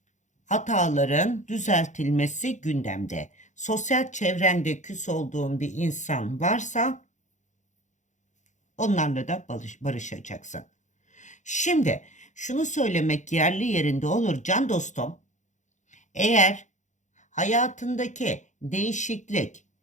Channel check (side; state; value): right; late; 0.35 ms